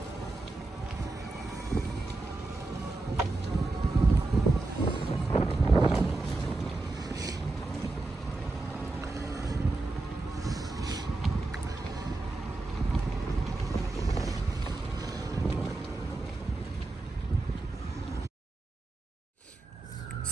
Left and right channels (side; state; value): left; quieter; 3.2 dB